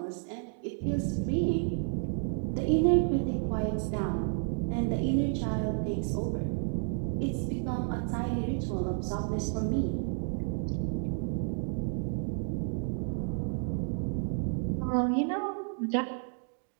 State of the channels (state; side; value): silent; left; 57 dB below the other